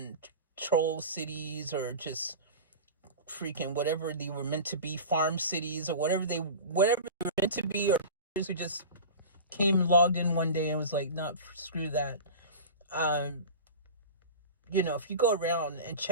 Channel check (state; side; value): inverted; both; correlation -0.32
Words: troll cities, or just freaking whatever they were meant to be, farm cities, or whatever they were meant to be, or who just came and logged in one day and was like, nah, screw that. You know, if you go around and